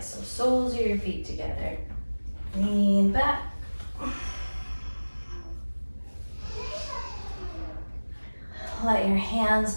soles of your feet together. Lean back. Let your hands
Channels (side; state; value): both; inverted; correlation -1.00